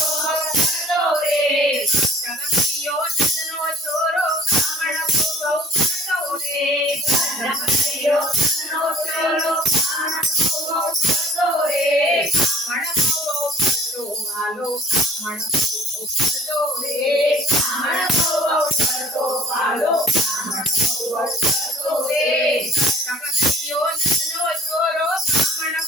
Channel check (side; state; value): both; normal; correlation 0.51